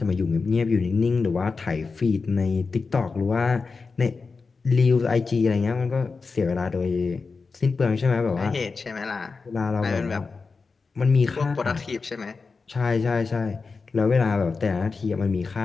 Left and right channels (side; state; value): right; quieter; 4.5 dB